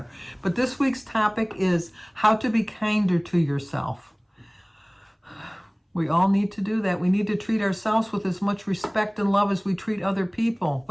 But this week's topic is how to be kinder to yourself. We all need to do that. We need to treat ourselves with as much respect and love as we treat other people.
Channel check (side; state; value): both; identical; correlation 1.00